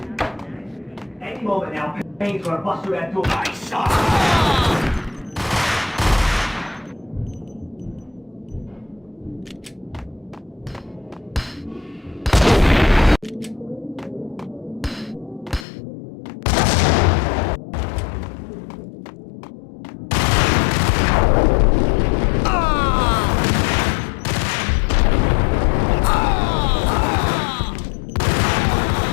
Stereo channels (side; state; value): right; drops out; at 15.7 s